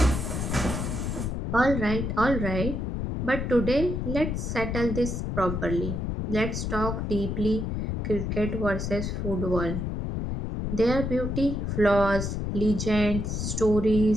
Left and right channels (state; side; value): noise; left; rumble, 2 dB below the sound